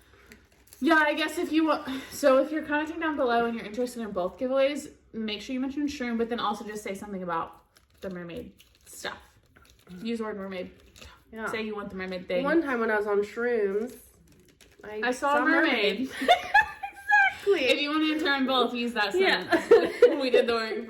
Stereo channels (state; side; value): identical; both; correlation 1.00